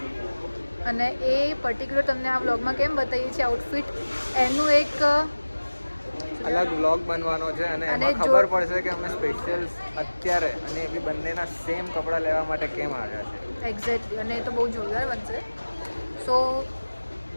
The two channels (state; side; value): inverted; both; correlation -1.00